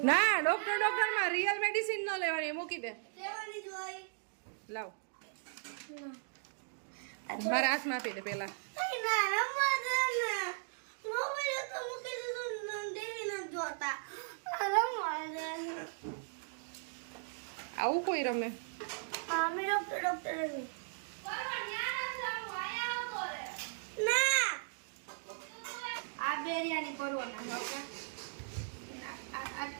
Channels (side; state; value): left; silent; digital silence